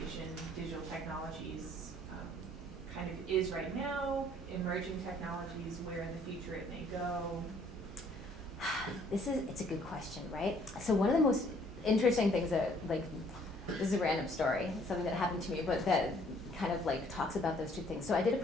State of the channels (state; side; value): normal; both; correlation 0.61